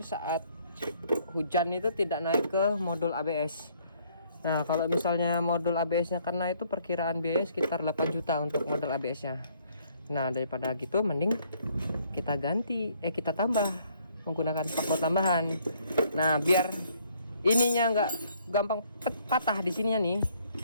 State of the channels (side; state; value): both; inverted; correlation -0.65